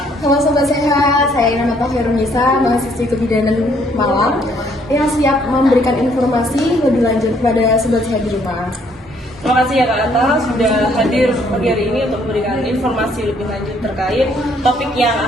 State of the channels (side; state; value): both; normal; correlation 0.66